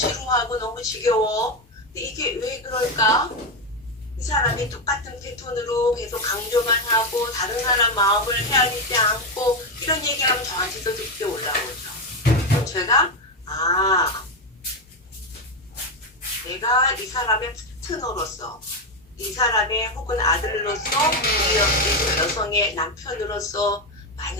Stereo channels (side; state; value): both; normal; correlation 0.09